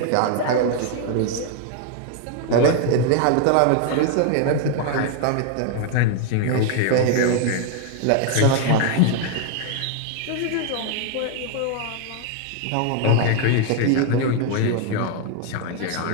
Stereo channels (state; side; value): different; both; correlation 0.00